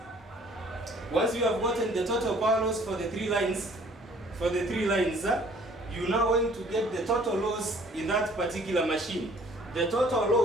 Once you have gotten the total power loss for the 3 lines, you now going to get the total loss in that particular machine. The total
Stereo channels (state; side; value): normal; both; correlation 0.56